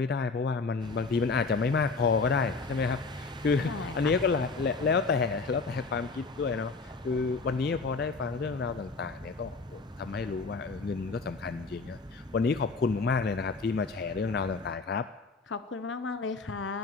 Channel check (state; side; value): quieter; right; 4.2 dB